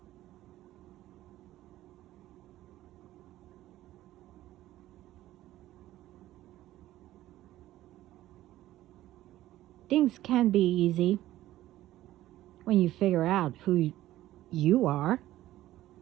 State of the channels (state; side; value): quieter; left; 14.8 dB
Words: Things can be easy when you figure out who you are